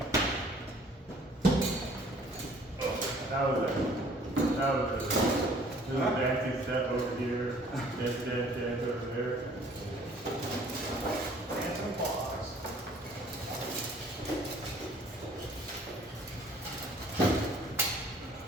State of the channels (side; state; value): both; normal; correlation 0.56